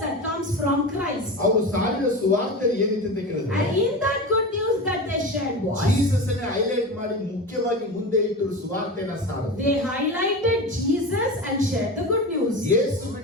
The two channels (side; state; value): both; normal; correlation 0.26